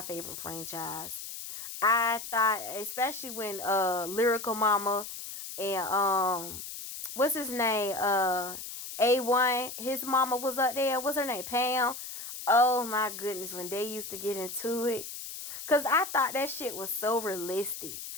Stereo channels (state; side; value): noise; left; hiss, 9 dB below the sound